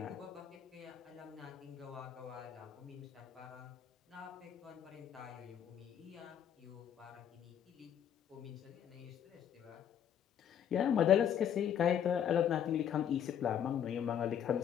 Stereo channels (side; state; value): right; quieter; 9.2 dB